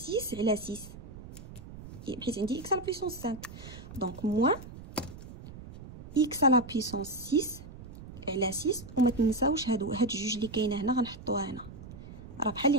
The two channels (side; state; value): right; noise; rumble, 14 dB below the sound